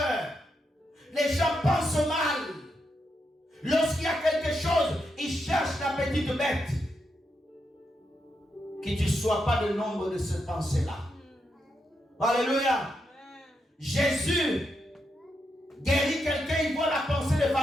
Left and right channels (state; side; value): normal; both; correlation 0.83